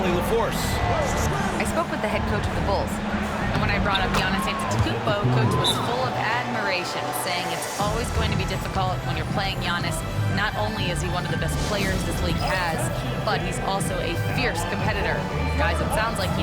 LaForce. I spoke with the head coach of the Bulls. And when I brought up Giannis Antetokounmpo, coach was full of admiration, saying it's always going to be difficult when you're playing Giannis. Not only is he one of the best players this league has, but he's also a fierce competitor. Guys, it sounds like he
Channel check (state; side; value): identical; both; correlation 1.00